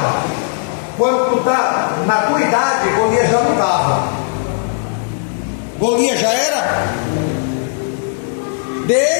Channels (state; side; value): silent; right; digital silence